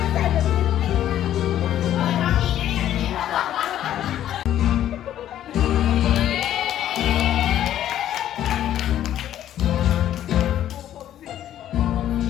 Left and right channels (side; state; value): right; quieter; 11.7 dB